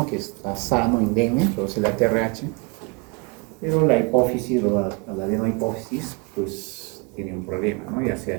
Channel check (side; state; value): left; quieter; 30.3 dB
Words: que está sano, indemne, produce la TRH, pero la hipófisis o la adenohipófisis, pues tiene un problema, ¿no? Ya sea